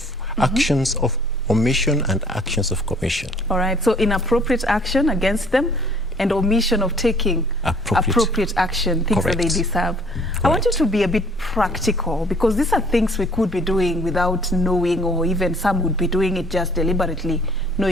omission and actions of commission. All right, so inappropriate action against them and omission of taking appropriate action, things that they deserve. Correct. I want you to be a bit practical, because these are things we could be doing without knowing, or even some would be doing it just deliberately,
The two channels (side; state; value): both; normal; correlation 0.57